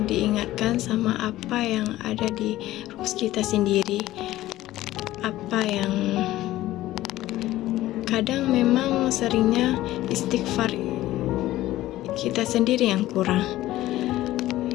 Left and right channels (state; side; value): quieter; right; 15.5 dB